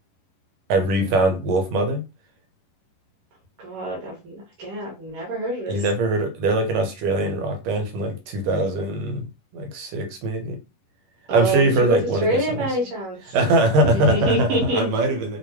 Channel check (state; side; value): late; left; 11 ms